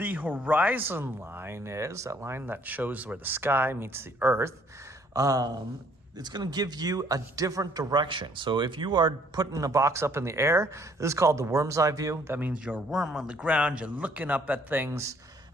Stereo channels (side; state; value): both; normal; correlation 0.62